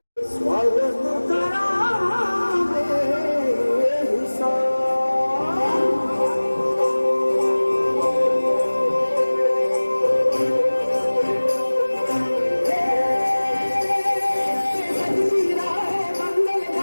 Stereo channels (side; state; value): both; inverted; correlation -1.00